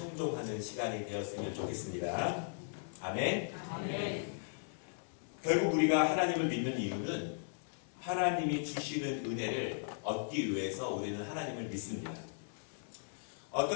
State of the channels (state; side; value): silent; right; digital silence